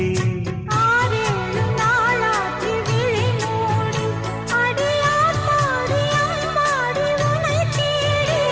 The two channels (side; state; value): both; identical; correlation 1.00